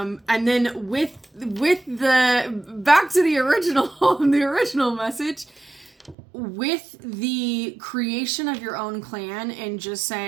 then with the back to the original the original message, with the creation of your own clan and just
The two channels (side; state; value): left; drops out; at 6.2 s